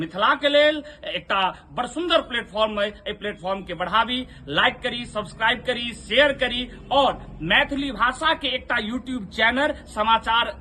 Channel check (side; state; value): both; identical; correlation 1.00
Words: के लेल एकटा बड़ सुंदर प्लेटफॉर्म है, एहि प्लेटफॉर्म के बढ़ावी, लाइक करी, सब्सक्राइब करी, शेयर करी और मैथिली भाषा के एकटा यूट्यूब चैनल, समाचार